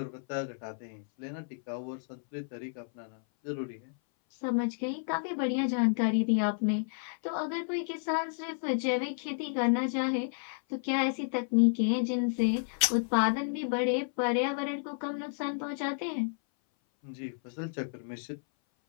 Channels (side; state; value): right; silent; 57 dB below the other